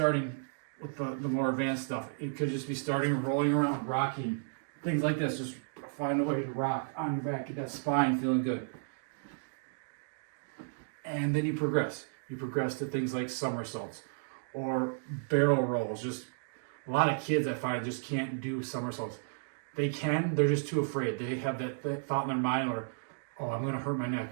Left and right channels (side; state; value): left; silent; digital silence